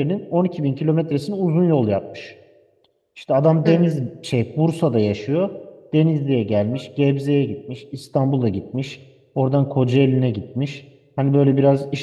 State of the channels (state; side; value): identical; both; correlation 1.00